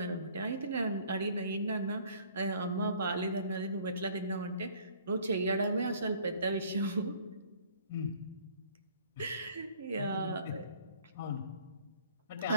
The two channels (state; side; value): inverted; both; correlation -0.55